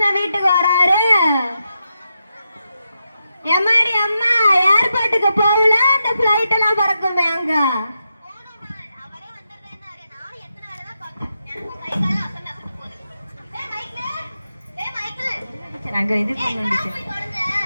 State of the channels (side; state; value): both; inverted; correlation -0.86